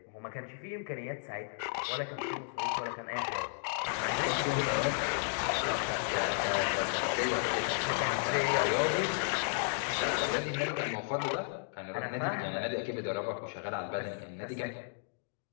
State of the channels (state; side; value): silent; right; digital silence